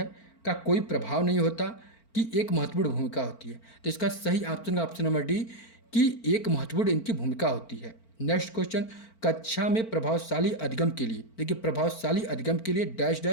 का कोई प्रभाव नहीं होता, कि एक महत्वपूर्ण भूमिका होती है? तो इसका सही ऑप्शन ऑप्शन नंबर डी, कि एक महत्वपूर्ण इनकी भूमिका होती है। नेक्स्ट क्वेश्चन, कक्षा में प्रभावशाली अधिगम के लिए, देखिए प्रभावशाली अधिगम के लिए डैश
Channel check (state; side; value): late; right; 4.4 ms